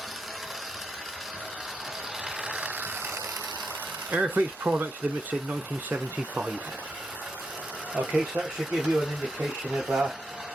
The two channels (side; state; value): both; normal; correlation 0.84